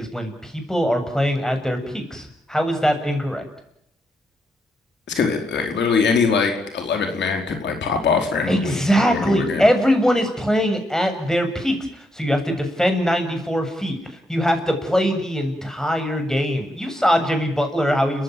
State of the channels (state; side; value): normal; both; correlation 0.79